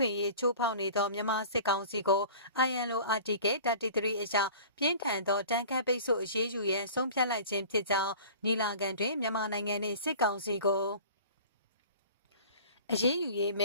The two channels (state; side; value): inverted; both; correlation -0.43